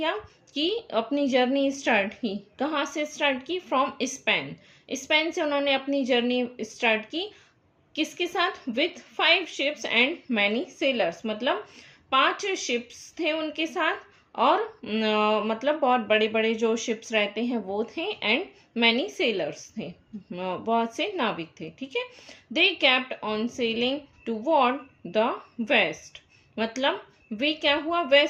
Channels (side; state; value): both; identical; correlation 1.00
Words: कि अपनी जर्नी स्टार्ट की। कहाँ से स्टार्ट की? From Spain. स्पेन से उन्होंने अपनी जर्नी स्टार्ट की। किसके साथ? With 5 ships and many sellers. मतलब 5 शिप्स थे उनके साथ, और मतलब बहुत बड़े बड़े जो शिप्स रहते हैं वो थे, एंड मैनी सेलर्स थे, बहुत से नाविक थे। ठीक है, they kept on sailing toward the west. मतलब वे क्या हुआ?